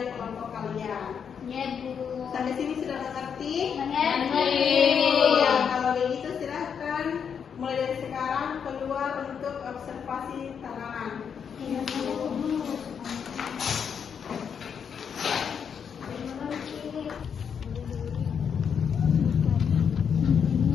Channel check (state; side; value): quieter; right; 7.2 dB